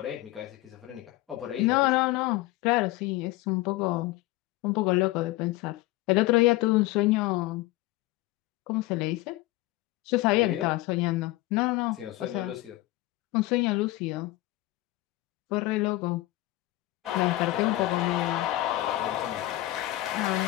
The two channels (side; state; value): right; quieter; 17.8 dB